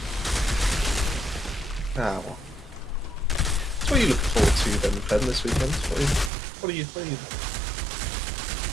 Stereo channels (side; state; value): left; drops out; at 6.3 s